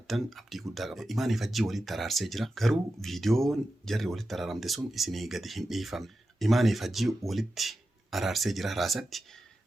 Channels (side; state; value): both; normal; correlation 0.91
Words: ابدي غودا غبا ايماني فجي ولي ترارسي جرا غرو فيديو جري ولي ترارامدي سون اسيني غدي هيم فام ايماني فجي وليت ارارسي جرا راساتي